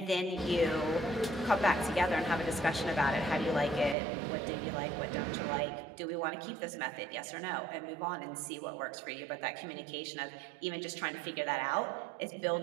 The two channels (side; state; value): left; drops out; at 4.0 s